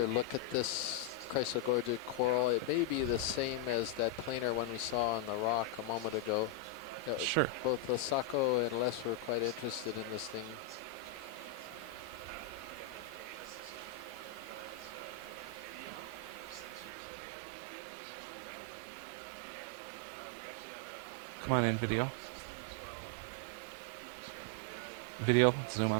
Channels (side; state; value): left; drops out; at 16.9 s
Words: look at this Chrysogorgia coral? It may be the same as that planar one we saw on the rock a moment ago. Sure. Both Asako and Les were quite interested in this thing. Come on in, video. Video, zoom